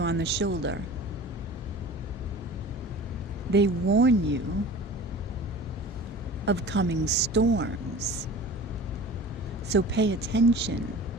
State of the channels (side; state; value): both; normal; correlation 0.39